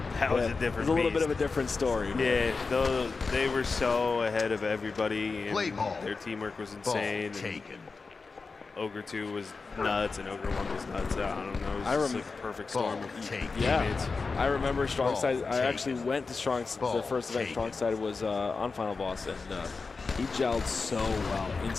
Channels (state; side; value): quieter; right; 4.4 dB